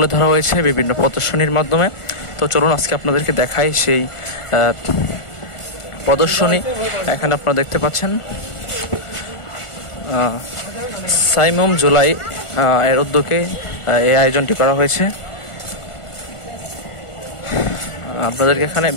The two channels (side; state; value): right; late; 1.4 ms